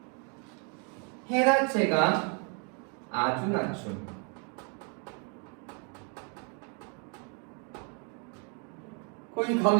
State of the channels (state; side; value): quieter; left; 37.5 dB